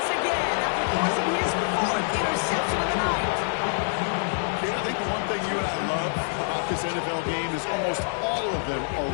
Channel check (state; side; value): silent; right; digital silence